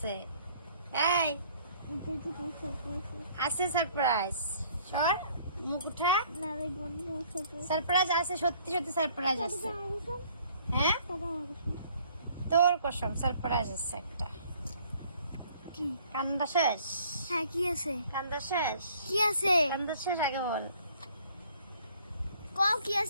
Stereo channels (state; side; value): inverted; both; correlation -0.58